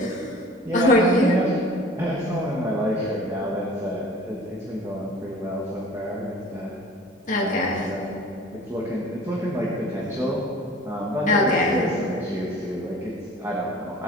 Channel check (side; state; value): both; normal; correlation 0.45